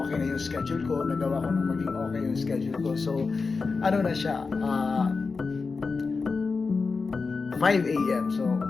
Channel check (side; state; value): right; quieter; 4.5 dB